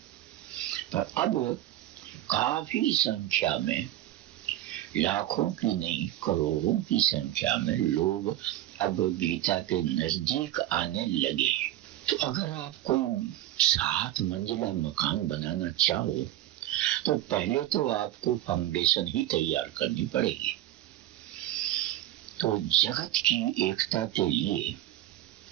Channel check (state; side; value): quieter; left; 14.0 dB